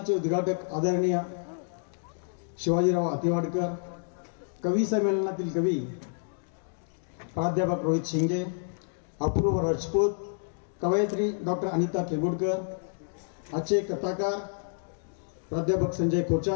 उद्घाटक आदरणीय शिवाजीराव अतिवाडकर, कवी संमेलनातील कवी प्राध्यापक रोहित शिंगे, अपूर्व राजपूत, कवयित्री डॉक्टर अनिता केगुडकर, आजचे कथाकार प्राध्यापक संजय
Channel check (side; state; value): right; silent; digital silence